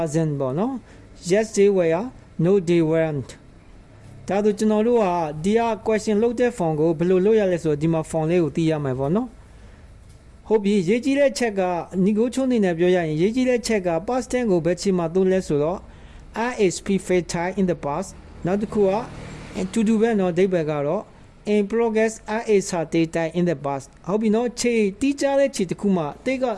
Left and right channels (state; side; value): identical; both; correlation 1.00